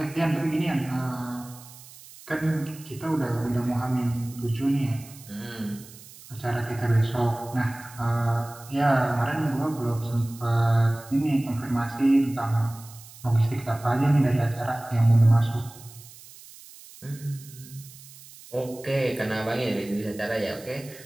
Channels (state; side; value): noise; right; hiss, 19 dB below the sound